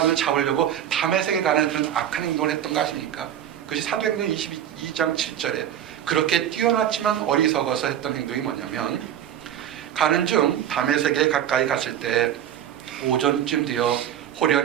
잡으려고 다메섹에 가는 그런 악한 행동을 했던 거 아십니까? 그것이 사도행전 22장 7절에 그렇게 뛰어났지만 어리석어서 했던 행동이 뭐냐면, 가는 중 다메섹에 가까이 갔을 때 오전쯤 되어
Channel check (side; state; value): left; quieter; 10.5 dB